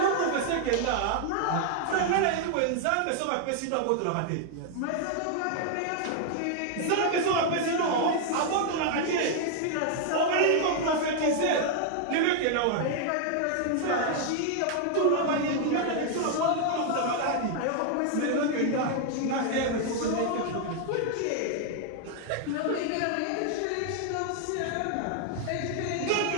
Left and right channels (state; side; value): different; both; correlation 0.00